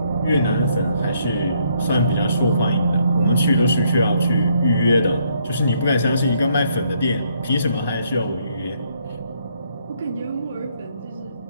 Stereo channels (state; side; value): inverted; both; correlation -0.71